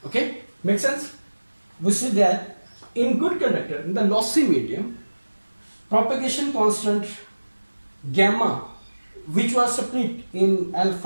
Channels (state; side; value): inverted; both; correlation -1.00